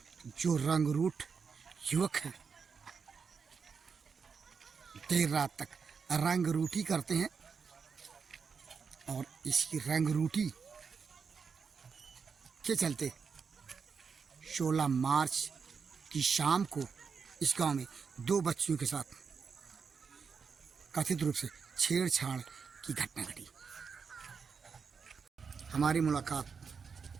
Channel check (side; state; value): left; quieter; 5.8 dB